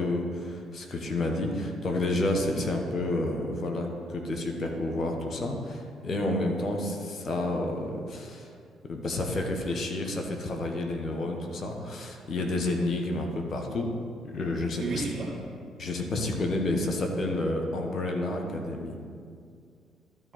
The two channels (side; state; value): both; normal; correlation 0.68